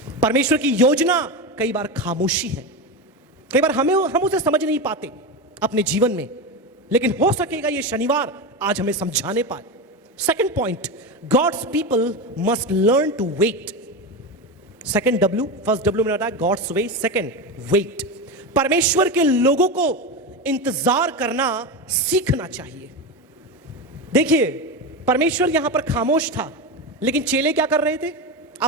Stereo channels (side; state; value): both; normal; correlation 0.18